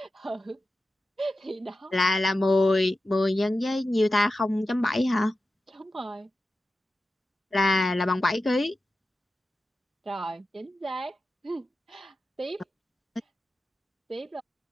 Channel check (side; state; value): both; normal; correlation 0.93